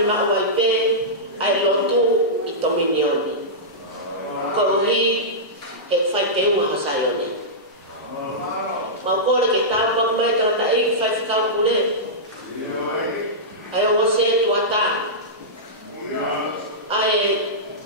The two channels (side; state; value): both; normal; correlation -0.13